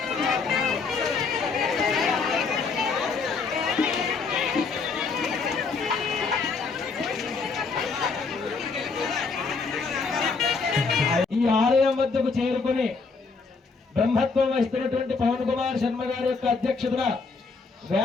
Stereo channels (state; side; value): quieter; right; 4.6 dB